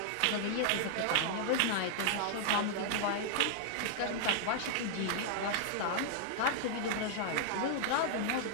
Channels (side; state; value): both; different; correlation -0.01